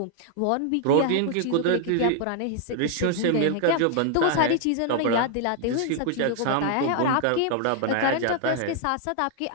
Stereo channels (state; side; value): different; both; correlation 0.00